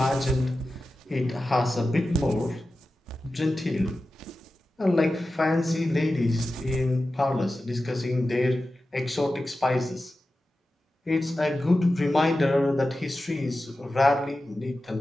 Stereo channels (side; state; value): both; normal; correlation 0.94